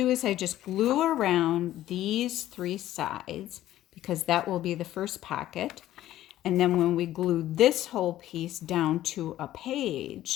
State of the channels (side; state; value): right; quieter; 13.7 dB